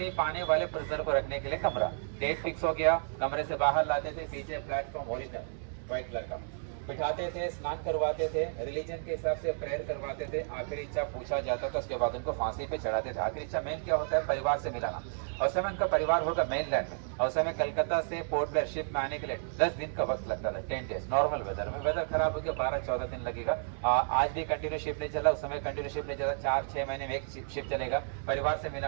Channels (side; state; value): left; silent; digital silence